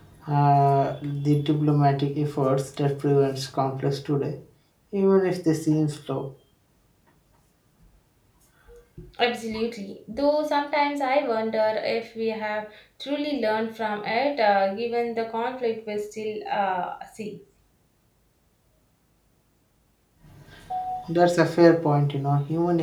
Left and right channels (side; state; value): both; identical; correlation 1.00